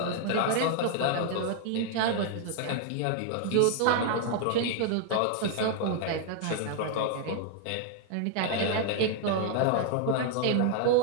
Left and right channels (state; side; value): different; both; correlation 0.00